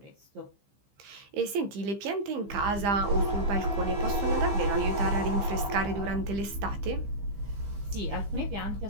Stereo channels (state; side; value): late; left; 15 ms